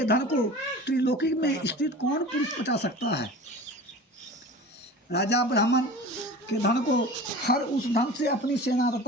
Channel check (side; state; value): both; normal; correlation 0.37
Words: धन को त्रिलोकी में स्थित कौन पुरुष पचा सकता है। राजा ब्राह्मण के धन को हर उस धन से अपनी सेना